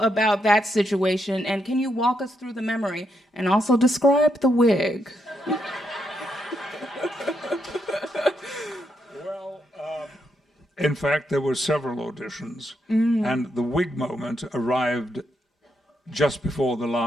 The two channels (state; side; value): normal; both; correlation 0.80